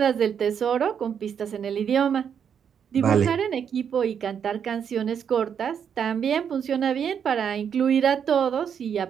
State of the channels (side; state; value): left; quieter; 7.8 dB